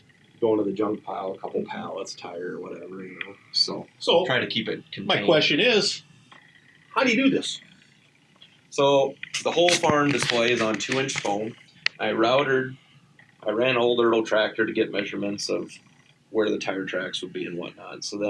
going to the junk pile, a couple pallets, tire, or whatever, So try to keep it contained. My question is, how do you do this? So the whole farm display is on 2-inch foam. I ran a whole little tractor to get measurements of where the tire tracks would be and whatnot. So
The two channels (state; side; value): identical; both; correlation 1.00